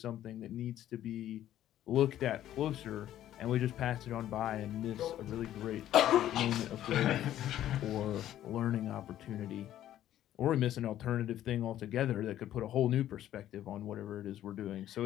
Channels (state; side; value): quieter; right; 12.3 dB